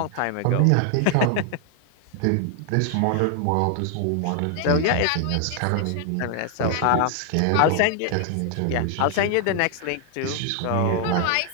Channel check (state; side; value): different; both; correlation 0.00